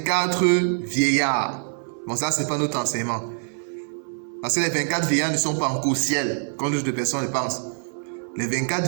vieillards. Bon, ça, ce n'est pas notre enseignement. Parce que les 24 vieillards ne sont pas encore au ciel, comme d'autres personnes le pensent. Les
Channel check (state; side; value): silent; left; 62 dB below the other